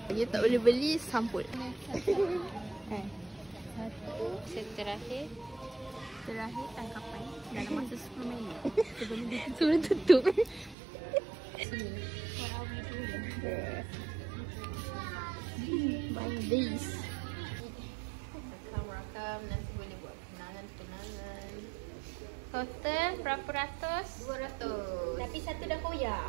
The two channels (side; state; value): left; drops out; at 10.8 s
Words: Dia tak boleh beli, sampul. Satu terakhir. Terakhir tangkapan dalam masa 10 minit. Sebelum tutup. Sini. Banyak days. Rakam nanti boleh buat kenangan. Total berapa ratus? 200. Tapi satu dah